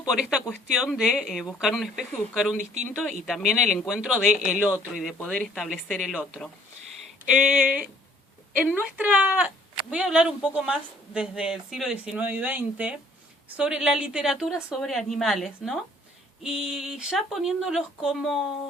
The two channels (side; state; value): both; normal; correlation 0.59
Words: por esta cuestión de buscar un espejo y buscar un distinto, y también el encuentro del otro y de poder establecer el otro. Voy a hablar un poco más desde el siglo XIX y XX, sobre la literatura sobre animales, ¿no? Y ya poniéndolos